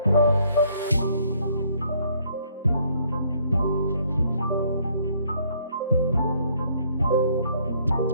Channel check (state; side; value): inverted; both; correlation -0.65